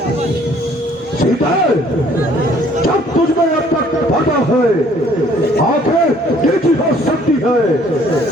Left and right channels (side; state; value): both; normal; correlation 0.59